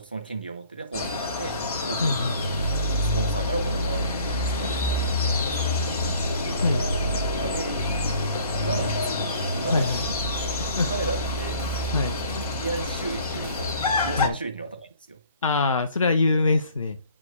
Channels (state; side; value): inverted; both; correlation -0.54